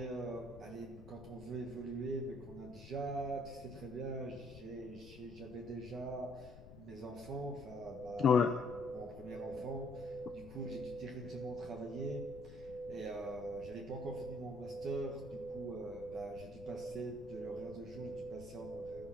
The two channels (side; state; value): left; noise; rumble, 15 dB below the sound